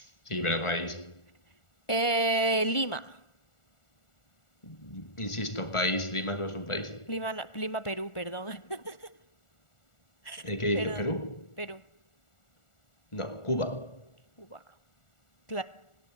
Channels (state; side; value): late; right; 1.4 ms